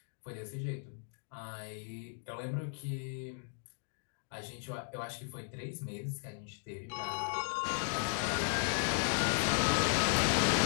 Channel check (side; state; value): right; silent; digital silence